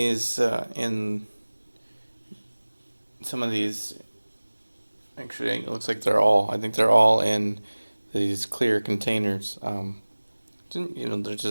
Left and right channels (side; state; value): both; inverted; correlation -1.00